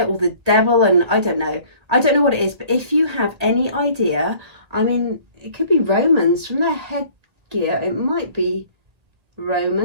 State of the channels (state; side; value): late; left; 1.8 ms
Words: or the devil, and I don't know. I don't know what it is, but if you have any idea, I mean, it could be Romans from their headgear. It might be